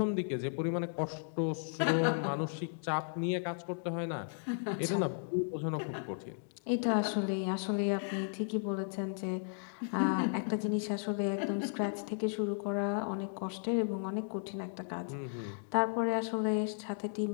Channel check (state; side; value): silent; right; digital silence